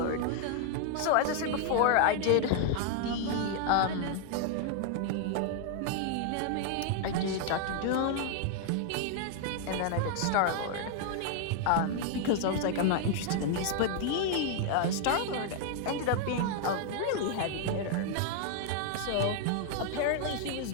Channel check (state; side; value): different; both; correlation 0.00